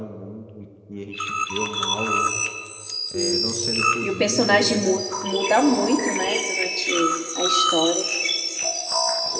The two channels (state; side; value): identical; both; correlation 1.00